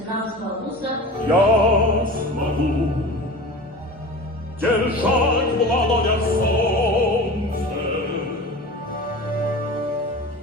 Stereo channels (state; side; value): normal; both; correlation 0.34